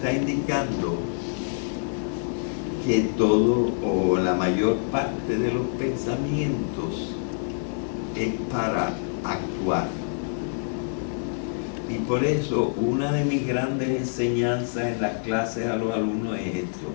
indicando que todo o la mayor parte de los pensamientos es para actuar. Y por eso una de mis grandes enseñanzas en las clases a los alumnos es esto:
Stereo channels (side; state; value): right; silent; digital silence